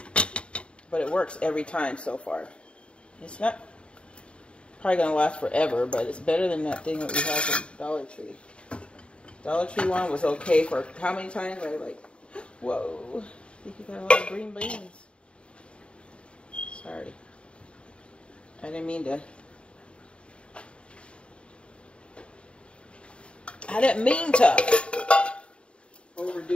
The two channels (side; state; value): right; late; 0.057 ms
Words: But it works every time so far. It's not probably going to last forever, but it's better than that thing that we have from Dollar Tree. Dollar Tree one was okay for how many times? I was like, whoa, I think you got a lot of green beans. Sorry. I didn't mean to. I didn't mean to